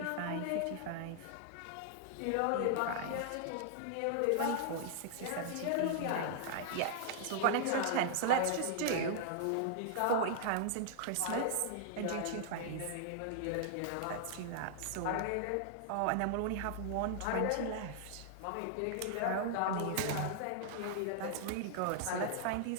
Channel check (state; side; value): different; both; correlation -0.01